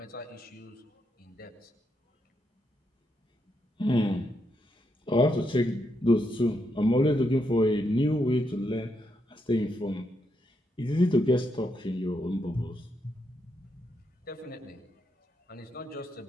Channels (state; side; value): normal; both; correlation 0.81